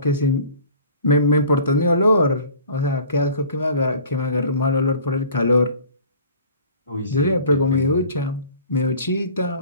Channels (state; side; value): inverted; both; correlation -0.47